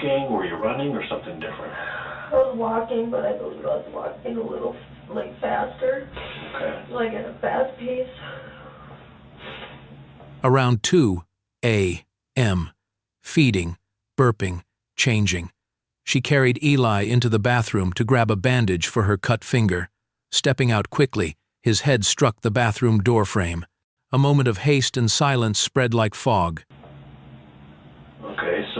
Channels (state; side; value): identical; both; correlation 1.00